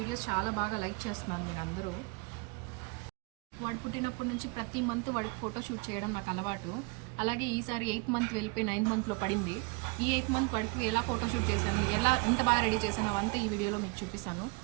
చాలా బాగా లైక్ చేస్తున్నారు మీరు అందరూ. వాడు పుట్టినప్పటి నుంచి ప్రతి మంత్ వాడికి ఫోటో షూట్ చేయడం నాకు అలవాటు. అలాగే ఈసారి 8th మంత్ వెళ్ళిపోయి 9th మంత్లో పడింది. ఈ 8th మంత్ వాడికి ఎలా ఫోటో షూట్ చేశాను, ఎంత బాగా రెడీ చేశాను అవంతా ఈ వీడియోలో మీకు చూపిస్తాను.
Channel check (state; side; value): quieter; left; 29.5 dB